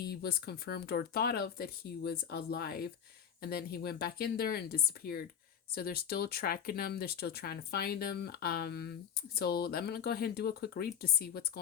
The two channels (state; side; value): quieter; right; 8.4 dB